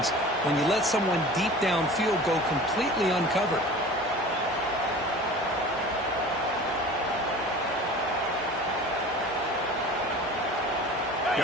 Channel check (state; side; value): normal; both; correlation 0.40